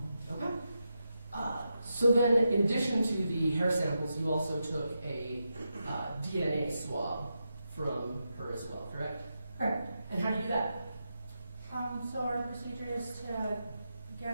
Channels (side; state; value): both; inverted; correlation -0.87